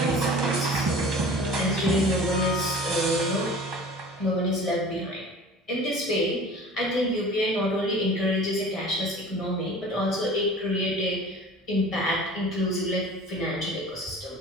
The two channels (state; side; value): normal; both; correlation 0.42